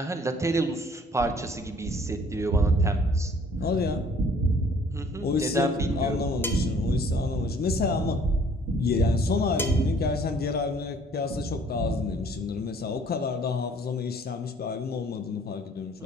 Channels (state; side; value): normal; both; correlation 0.57